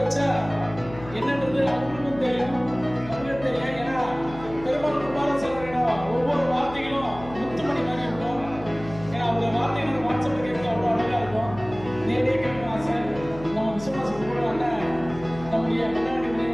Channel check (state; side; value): noise; left; hum, 15 dB below the sound